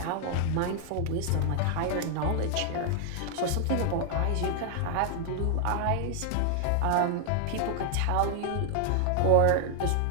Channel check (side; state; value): both; different; correlation 0.00